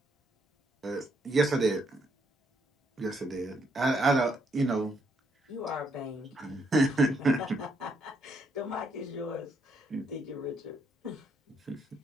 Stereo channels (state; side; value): normal; both; correlation 0.74